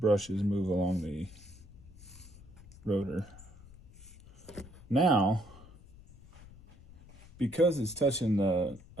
move along the rotor. Now, because it's touching the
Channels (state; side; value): noise; left; rumble, 20 dB below the sound